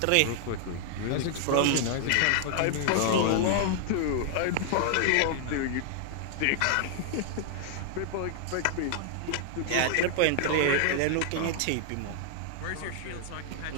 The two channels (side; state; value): both; different; correlation -0.01